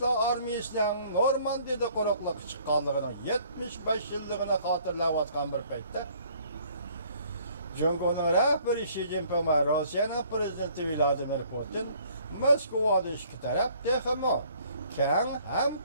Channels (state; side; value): inverted; both; correlation -0.59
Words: armiyasının Normandiyada qo'riqlikka chiqqanligining 75 yilligini xotirlayotgan bir paytda Jungoning rahbari Xi Jinping va Rossiyaning prezidenti Vladimir Putin Moskvada ikki taraf texmo keng